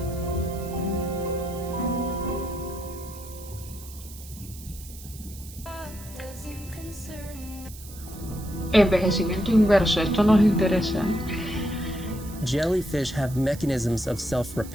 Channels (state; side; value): noise; right; hiss, 17 dB below the sound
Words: Envejecimiento inverso, esto nos interesa. Jellyfish have mechanisms of